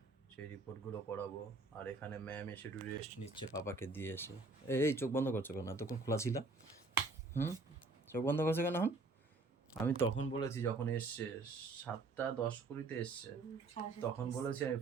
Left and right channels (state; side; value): quieter; left; 3.6 dB